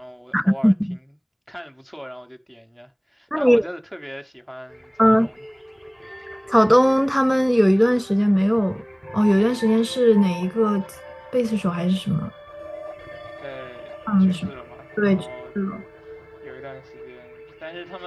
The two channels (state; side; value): identical; both; correlation 1.00